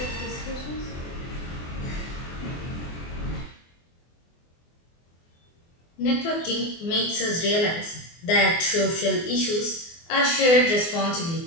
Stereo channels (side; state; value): right; late; 24 ms